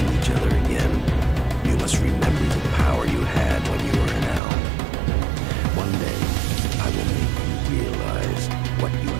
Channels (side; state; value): left; drops out; at 4.4 s